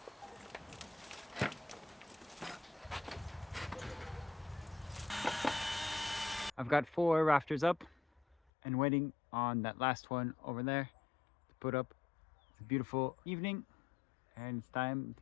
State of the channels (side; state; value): right; drops out; at 8.3 s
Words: I've got 4 rafters up and waiting on that last one over there to put up. It's a beautiful evening and it's time